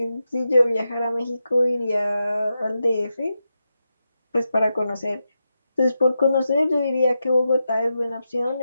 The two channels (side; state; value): both; inverted; correlation -0.88